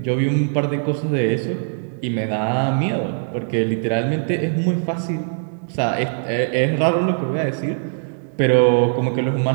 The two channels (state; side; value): silent; left; 65 dB below the other